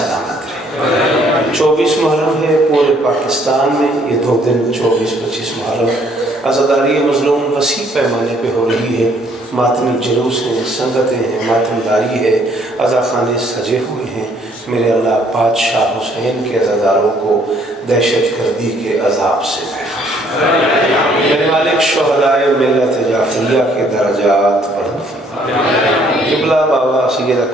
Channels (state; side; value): normal; both; correlation 0.64